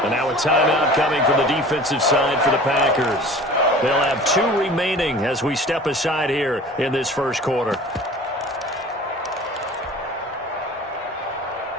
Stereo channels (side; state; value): both; normal; correlation 0.43